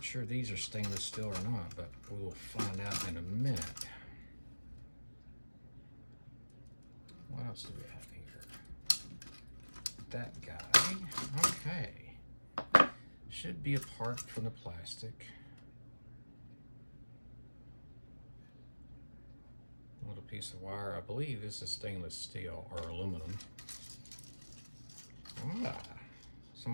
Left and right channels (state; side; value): inverted; both; correlation -1.00